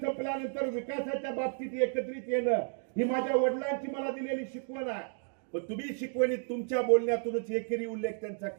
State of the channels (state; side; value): silent; left; 56 dB below the other